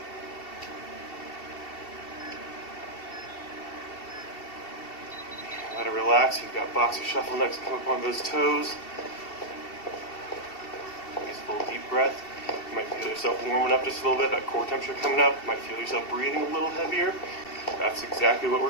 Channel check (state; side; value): late; right; 2.7 ms